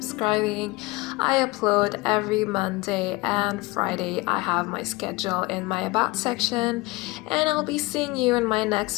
I upload every Monday and Friday. I have my schedule in my About section, and I'll be seeing you in my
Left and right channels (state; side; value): quieter; right; 22.5 dB